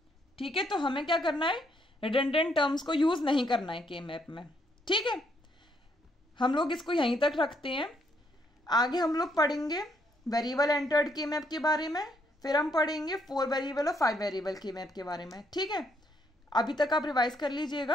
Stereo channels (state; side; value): normal; both; correlation 0.72